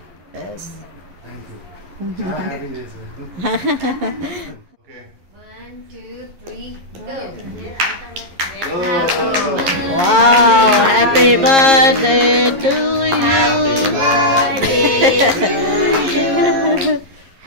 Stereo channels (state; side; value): late; left; 11 ms